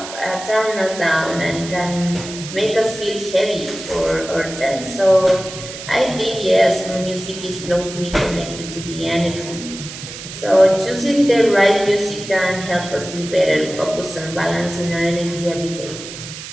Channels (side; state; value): right; noise; hiss, 11 dB below the sound